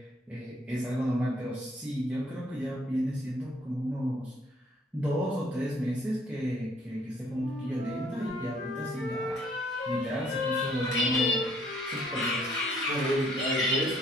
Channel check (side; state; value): both; normal; correlation 0.63